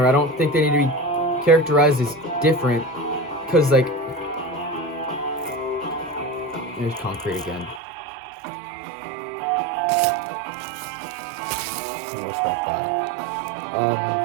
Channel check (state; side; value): drops out; left; at 7.8 s